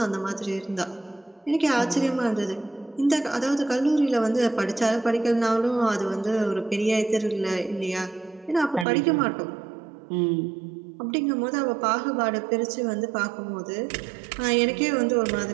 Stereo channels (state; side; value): drops out; left; at 8.8 s